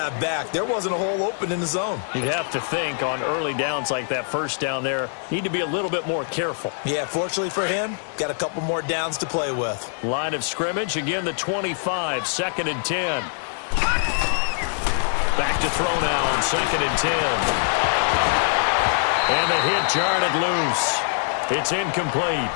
back. There wasn't a hole open in the zone. You'd have to think on early downs like that 1st down there, need to be a little bit more careful. Yeah, fortunately for him, got a couple more downs to play with. Line of scrimmage, again the 25, 2nd and 10. Back to throw now on 2nd and 10. And the hit jarred it loose. It's incomplete.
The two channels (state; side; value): silent; right; digital silence